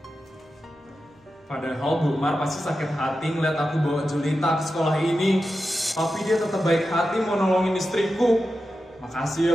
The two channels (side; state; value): both; normal; correlation 0.91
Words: Padahal Bu Mar pasti sakit hati ngeliat aku bawa Julita ke sekolah ini. Tapi dia tetap baik hati mau nolongin istriku. Makasih ya